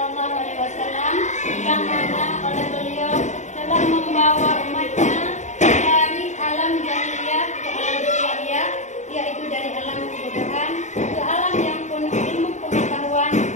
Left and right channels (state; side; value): late; right; 0.34 ms